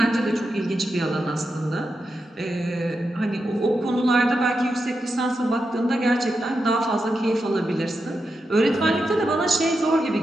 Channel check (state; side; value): normal; both; correlation 0.87